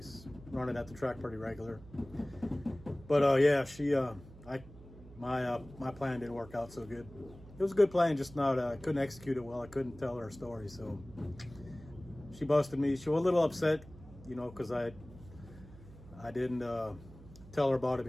Run it at the track pretty regular. But yeah, my plan didn't work out so good. It was a good plan, just not I couldn't execute it well. I couldn't tell her story, so she busted me. She was a little upset, you know, because I didn't tell her about it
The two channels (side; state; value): right; noise; hum, 19 dB below the sound